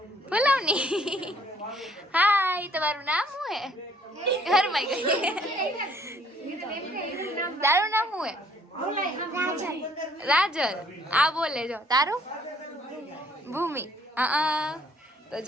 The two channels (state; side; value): normal; both; correlation 0.62